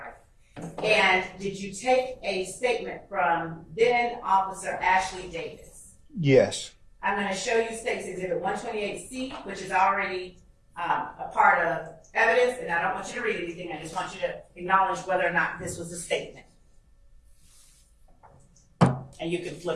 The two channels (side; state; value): both; identical; correlation 1.00